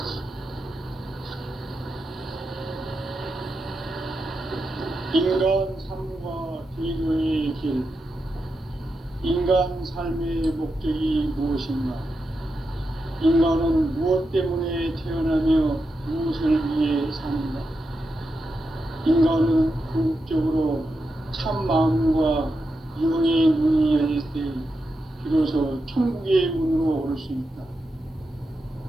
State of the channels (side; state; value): both; normal; correlation 0.87